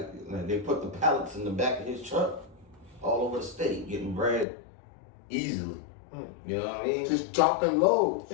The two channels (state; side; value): drops out; right; at 4.5 s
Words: they put the pallets in the back of his truck all over the state, getting bread easily. You know what I mean? Just dropping loads.